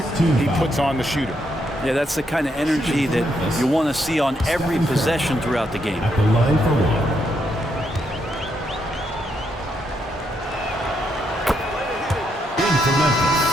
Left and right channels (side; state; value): both; normal; correlation 0.78